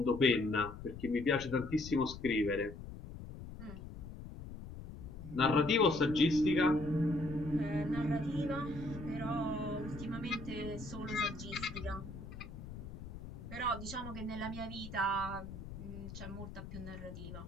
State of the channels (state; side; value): noise; left; rumble, 11 dB below the sound